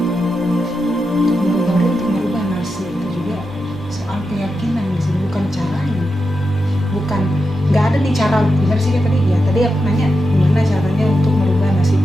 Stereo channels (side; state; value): both; normal; correlation 0.88